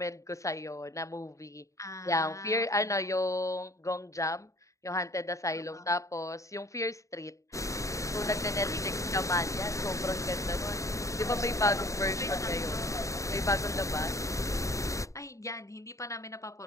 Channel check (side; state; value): right; late; 0.15 ms